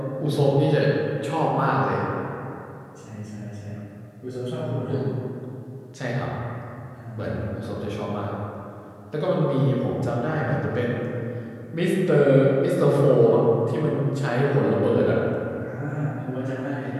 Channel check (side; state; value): both; identical; correlation 1.00